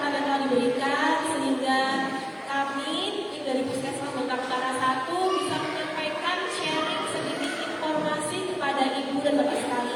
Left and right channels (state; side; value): identical; both; correlation 1.00